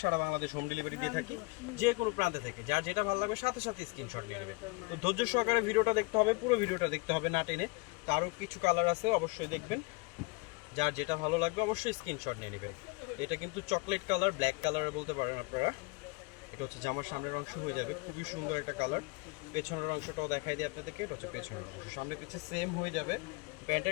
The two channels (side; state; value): right; quieter; 26.6 dB